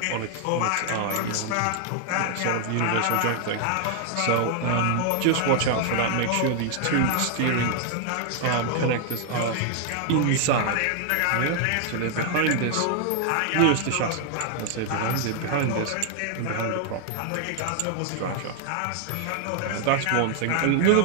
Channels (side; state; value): both; different; correlation 0.00